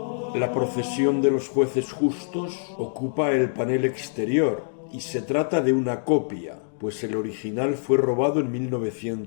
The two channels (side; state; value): right; silent; digital silence